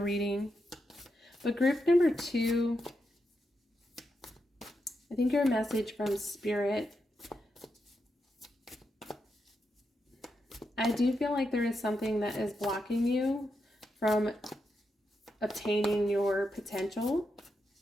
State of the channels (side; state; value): both; normal; correlation 0.85